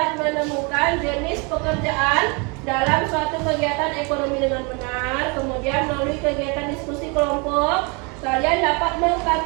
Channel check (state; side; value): quieter; left; 31.4 dB